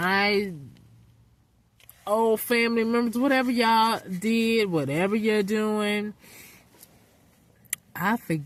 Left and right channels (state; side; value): identical; both; correlation 1.00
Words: old family members, whatever y'all did, whatever you're doing, I